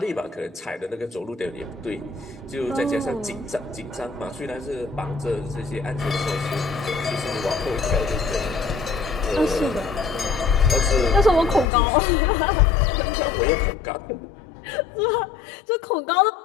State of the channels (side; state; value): right; drops out; at 11.7 s